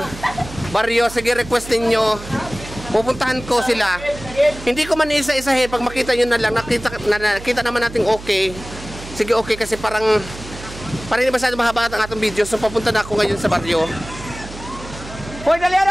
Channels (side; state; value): right; noise; hum, 14 dB below the sound